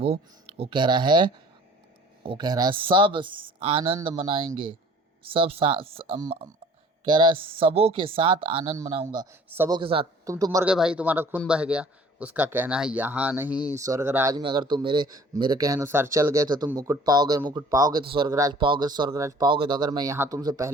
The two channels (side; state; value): both; normal; correlation 0.51